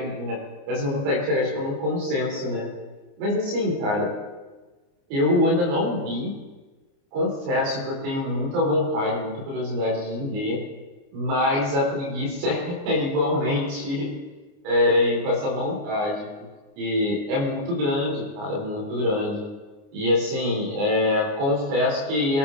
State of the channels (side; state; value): left; late; 29 ms